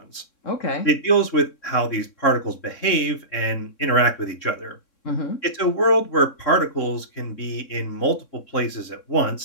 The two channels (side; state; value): right; late; 3.6 ms